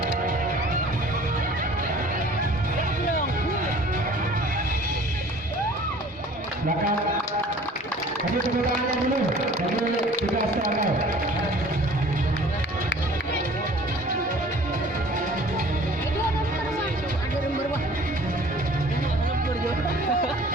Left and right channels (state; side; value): normal; both; correlation 0.49